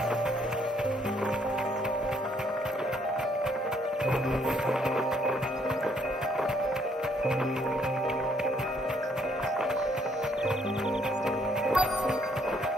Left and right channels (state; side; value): normal; both; correlation 0.68